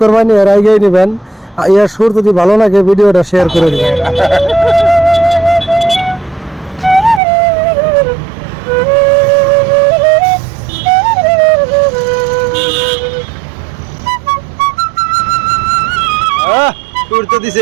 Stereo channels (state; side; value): drops out; left; at 7.2 s